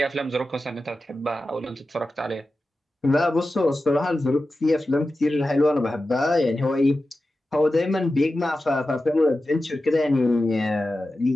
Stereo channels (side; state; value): both; normal; correlation 0.93